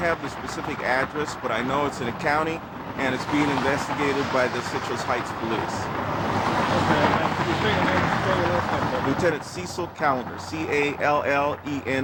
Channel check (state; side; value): identical; both; correlation 1.00